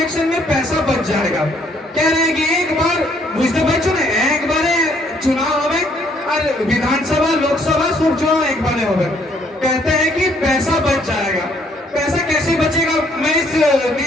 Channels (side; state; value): both; normal; correlation 0.66